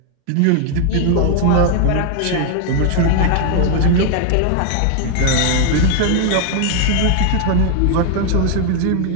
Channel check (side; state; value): both; different; correlation 0.00